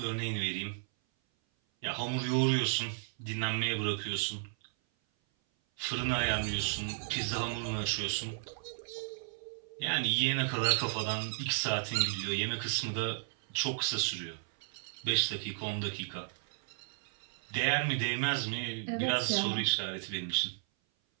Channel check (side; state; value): left; silent; 55 dB below the other